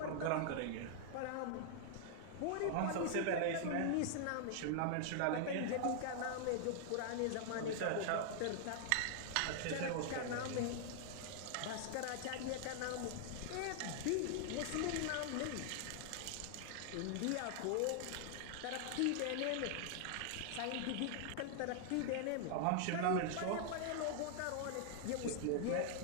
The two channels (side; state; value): both; different; correlation -0.01